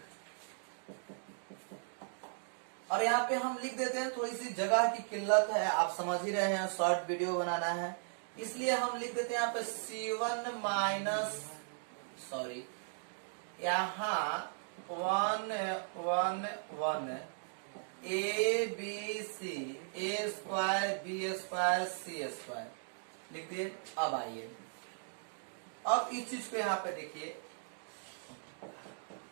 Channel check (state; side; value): silent; left; digital silence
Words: और यहाँ पे हम लिख देते हैं, थोड़ी सी जगह की किल्लत है, आप समझ ही रहे हैं, शॉर्ट वीडियो बनाना है, इसलिए हम लिख देते हैं यहाँ पे C1 माइनस यहाँ 1-1-1 ABC A square B square C square लिख दिए। अब आइए अब इस चीज को यहाँ पे देखिए,